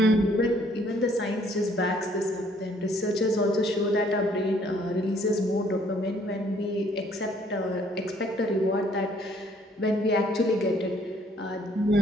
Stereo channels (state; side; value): normal; both; correlation 0.63